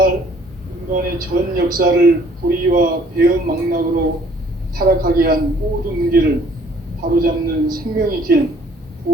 인간의 전 역사를 불의와 배움 망락으로 타락하게 한 모든 문제를 바로잡는 생명의 길,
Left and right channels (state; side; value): normal; both; correlation 0.58